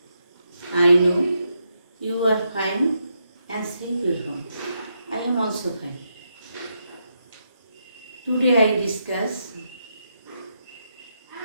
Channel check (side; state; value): both; inverted; correlation -0.82